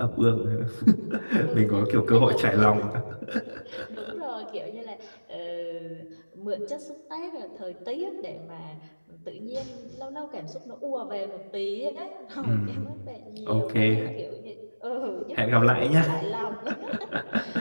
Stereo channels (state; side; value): inverted; both; correlation -1.00